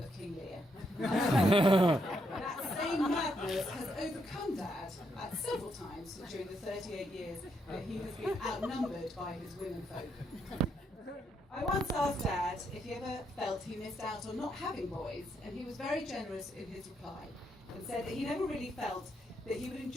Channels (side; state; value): both; normal; correlation 0.77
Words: King Lear. That same madness has overcome Dad several times during the 38 years that he has been outnumbered by his womenfolk. I once asked Dad if he ever felt he missed out on not having boys, and he was very generous in his reply and said that he never really felt that he would